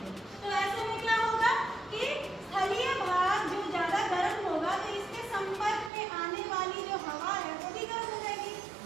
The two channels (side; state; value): left; drops out; at 5.9 s